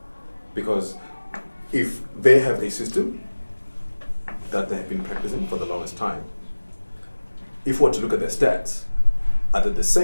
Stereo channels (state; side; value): inverted; both; correlation -1.00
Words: Because if they have a system that they have been practicing for the longest time, if we were to look at their stats, are they the